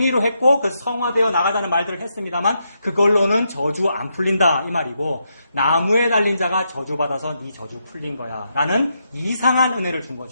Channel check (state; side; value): inverted; both; correlation -0.81